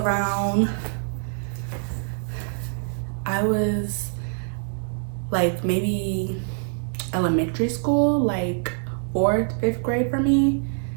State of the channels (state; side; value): silent; left; digital silence